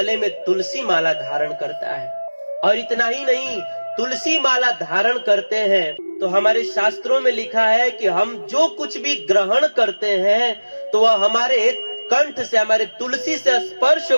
में तुलसी माला धारण करता है। और इतना ही नहीं, तुलसी माला धारण करते हैं तो हमारे शास्त्रों में लिखा है कि हम जो कुछ भी ग्रहण करते हैं, तो वह हमारे कंठ से, हमारे तुलसी से स्पर्श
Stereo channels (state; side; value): inverted; both; correlation -1.00